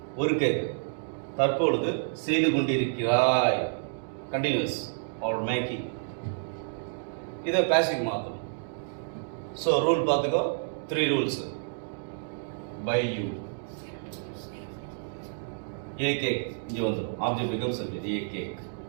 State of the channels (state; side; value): silent; left; digital silence